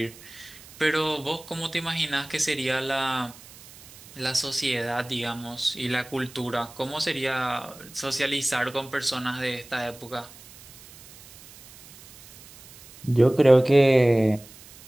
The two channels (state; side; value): noise; right; hiss, 21 dB below the sound